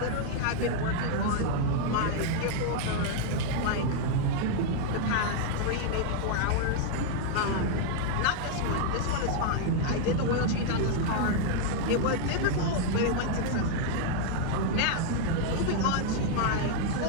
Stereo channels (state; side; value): different; both; correlation 0.00